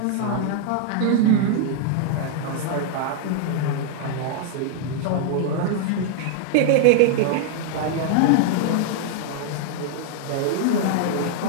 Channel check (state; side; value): different; both; correlation 0.00